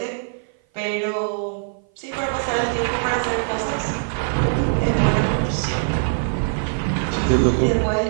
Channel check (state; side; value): silent; left; 56 dB below the other